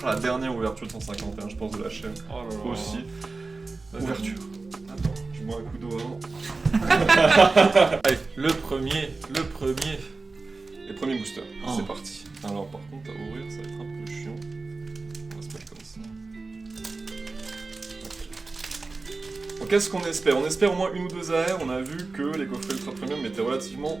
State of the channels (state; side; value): quieter; left; 3.7 dB